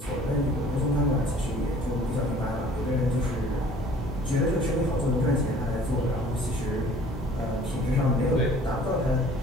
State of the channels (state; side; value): normal; both; correlation 0.52